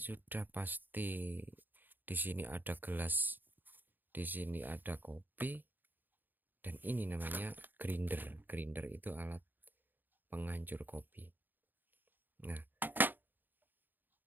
pasti. Di sini ada gelas, di sini ada kopi, dan ini namanya grinder. Grinder itu alat penghancur kopi. Nah,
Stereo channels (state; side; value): late; left; 0.090 ms